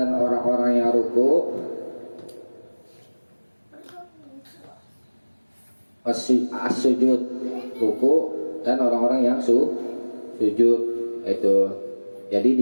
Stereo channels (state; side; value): inverted; both; correlation -1.00